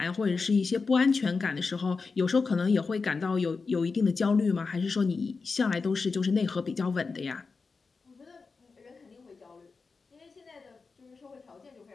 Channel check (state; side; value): quieter; right; 4.5 dB